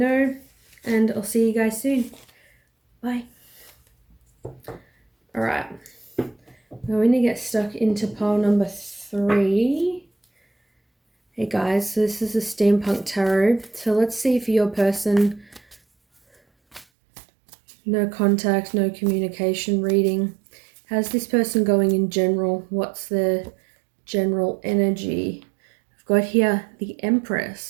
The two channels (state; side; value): drops out; left; at 16.9 s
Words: and I'll see you guys soon. Bye. Alright, we're going to get stuck into pile number 3. Hey guys, so this is a Steampunk Tarot. So let's see if your person, no contact, no communication reading. How's this person going in general? What's the general energy? I've got here the